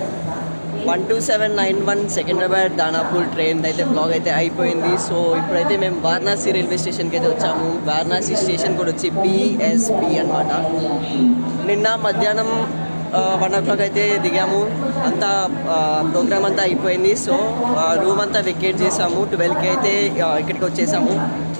12791 సికింద్రాబాద్ దానాపూర్ ట్రైన్ అయితే బ్లాగ్ అయితే అయిపోయింది. సో ఇప్పుడైతే మేము వారణాసి రైల్వే స్టేషన్కి అయితే వచ్చాము. వారణాసి స్టేషన్ కూడా వచ్చి BSP అనమాట. నిన్న మధ్యాహ్నం 1 o'clock అయితే దిగాము. అంతా ప్రోగ్రామ్ అంతా అయిపోయింది. సో రూమ్ అంతా వెకేట్ చేసాము. 12కి అయితే ఇక్కడికి వచ్చేసాము.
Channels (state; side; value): inverted; both; correlation -1.00